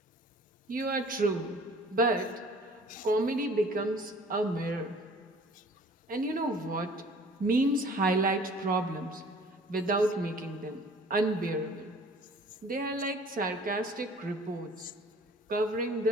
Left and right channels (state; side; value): normal; both; correlation 0.50